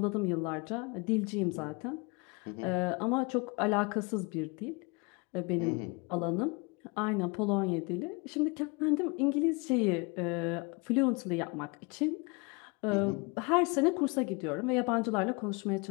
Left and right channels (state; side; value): quieter; right; 29.5 dB